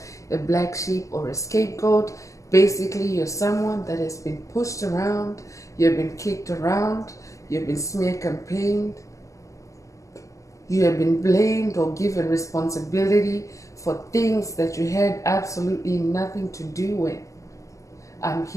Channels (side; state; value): right; late; 0.16 ms